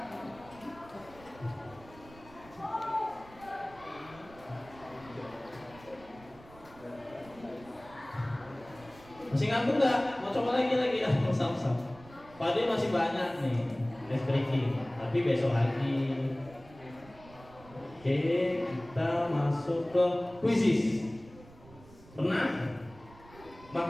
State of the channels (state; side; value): noise; right; rumble, 22 dB below the sound